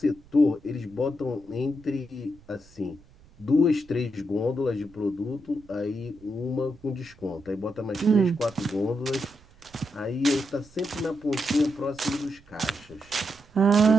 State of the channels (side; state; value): right; noise; rumble, 26 dB below the sound